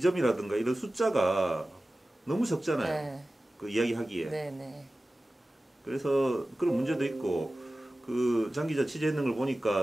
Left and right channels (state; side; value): normal; both; correlation 0.96